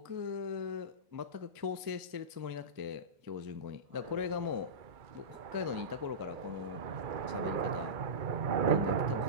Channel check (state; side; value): late; left; 1.0 ms